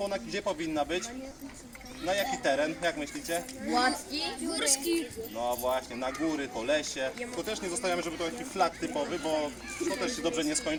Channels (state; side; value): identical; both; correlation 1.00